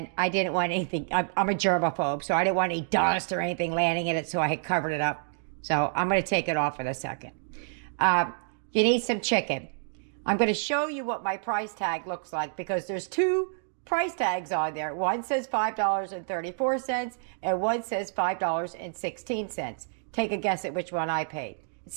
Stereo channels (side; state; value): left; silent; digital silence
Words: I didn't want anything. I'm a germaphobe, so I didn't want any dust or anything landing in it, so I had covered it up. So I'm gonna take it off in a second. You need some chicken. I'm gonna show you what my price tag looks like because there's two price tags on there. One says $5.34 and one says $5.16. Take a guess at which one I paid.